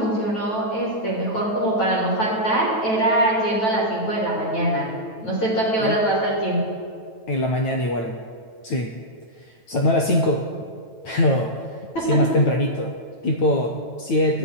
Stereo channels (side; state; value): right; late; 9.1 ms